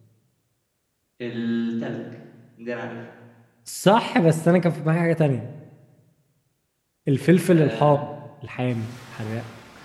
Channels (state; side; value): identical; both; correlation 1.00